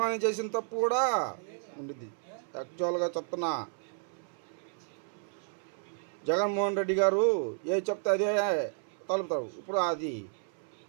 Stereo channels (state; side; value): silent; left; 56 dB below the other